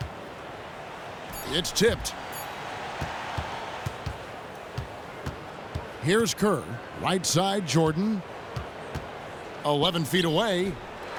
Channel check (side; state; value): both; identical; correlation 1.00